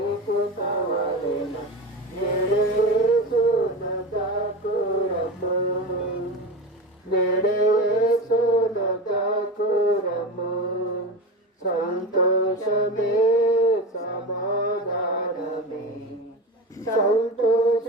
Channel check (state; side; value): normal; both; correlation 0.25